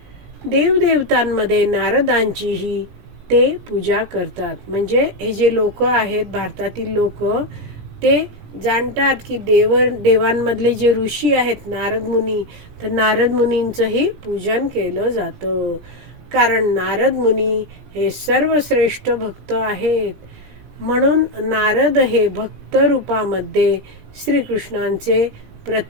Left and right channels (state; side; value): late; left; 18 ms